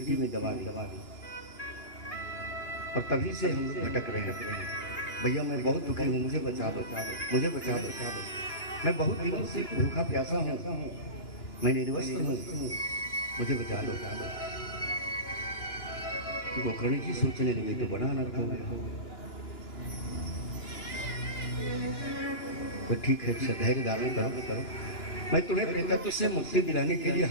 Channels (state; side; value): late; right; 2.9 ms